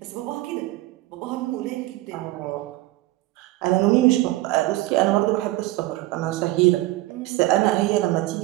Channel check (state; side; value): quieter; left; 17.9 dB